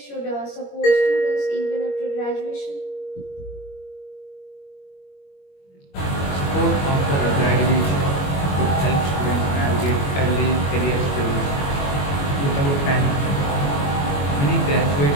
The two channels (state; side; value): late; right; 21 ms